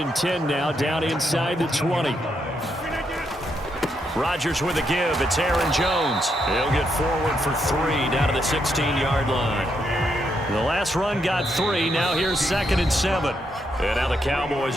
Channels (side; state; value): both; normal; correlation 0.79